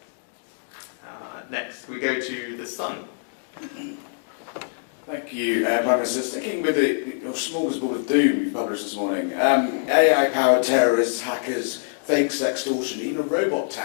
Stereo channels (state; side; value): silent; right; digital silence